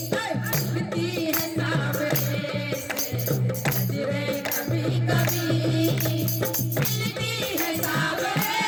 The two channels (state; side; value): identical; both; correlation 1.00